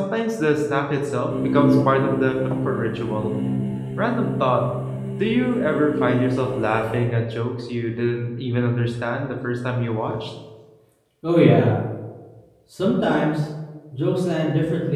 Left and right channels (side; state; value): both; identical; correlation 1.00